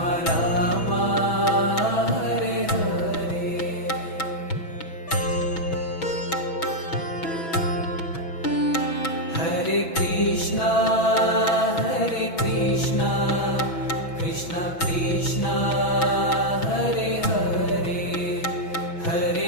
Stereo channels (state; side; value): late; right; 6.1 ms